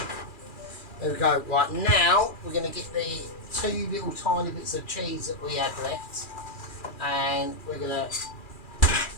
There we go. Right now, we're gonna get the 2 little tiny bits of cheese that we had left, and we're gonna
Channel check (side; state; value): right; late; 2.4 ms